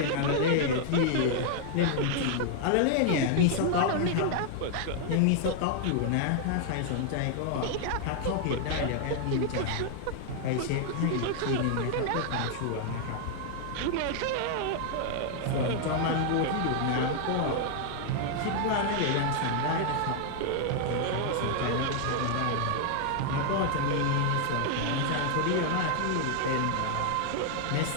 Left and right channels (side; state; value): both; different; correlation 0.00